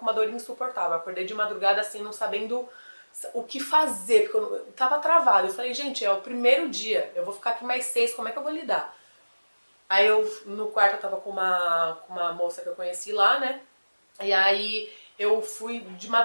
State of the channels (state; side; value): inverted; both; correlation -1.00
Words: uma dor insuportável. Eu acordei de madrugada, assim, não sabendo o que fazer, porque eu tava travada. Eu falei, gente, é o primeiro dia, eu vou ficar aqui mais 6, como é que eu vou lidar? Aí eu, no quarto, eu tava com uma moça que eu conheci lá, né? E aí eu fui de